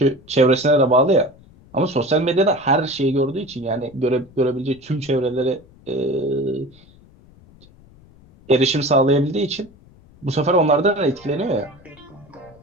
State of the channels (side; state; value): left; noise; rumble, 26 dB below the sound